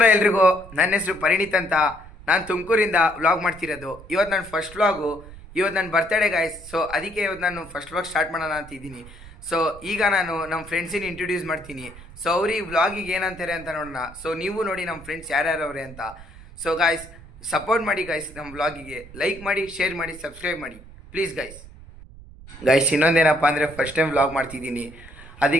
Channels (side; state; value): right; noise; rumble, 18 dB below the sound